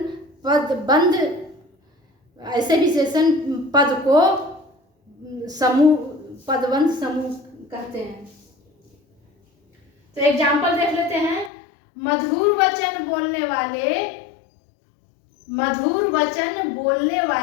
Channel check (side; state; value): right; drops out; at 11.5 s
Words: पद को समूह पदबंध समूह कहते हैं। तो एग्जाम्पल देख लेते हैं। मधुर वचन बोलने